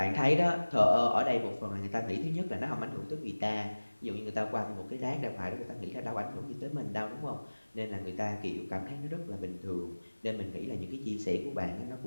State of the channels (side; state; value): both; inverted; correlation -1.00